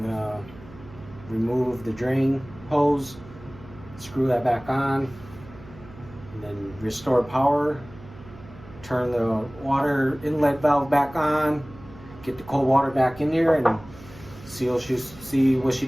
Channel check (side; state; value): right; noise; hum, 19 dB below the sound